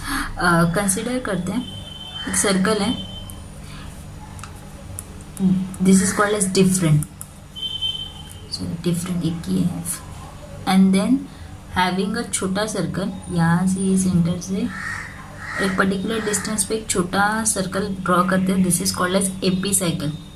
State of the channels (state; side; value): identical; both; correlation 1.00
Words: कंसिडर करते हैं. एक सर्कल है, this is called as different. So different एक ही है. एंड देन हैविंग अ छोटा सर्कल, यहाँ से सेंटर से एक पर्टिकुलर डिस्टेंस पे एक छोटा सर्कल ड्रॉ करते हैं. This is called as epicycle.